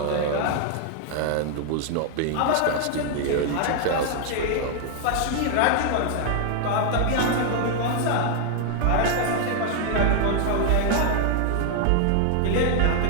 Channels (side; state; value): both; different; correlation 0.00